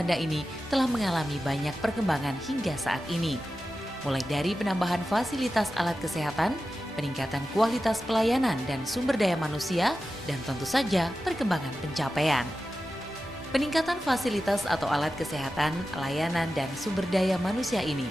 ini telah mengalami banyak perkembangan hingga saat ini. Mulai dari penambahan fasilitas alat kesehatan, peningkatan kualitas pelayanan dan sumber daya manusia, dan tentu saja perkembangan pencapaian. Peningkatan fasilitas atau alat kesehatan, layanan, dan sumber daya manusia ini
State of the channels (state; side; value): normal; both; correlation 0.93